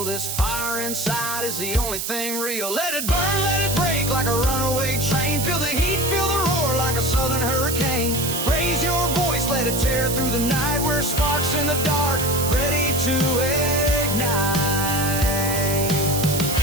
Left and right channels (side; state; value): right; noise; hiss, 3 dB below the sound